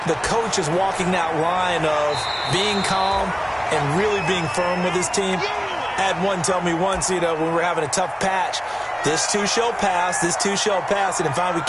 the coach is walking that line of being calm and really being firm with his team. I had one tell me once, when we were having a tough patch, this too shall pass, this too shall pass. And finally we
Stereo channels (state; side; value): identical; both; correlation 1.00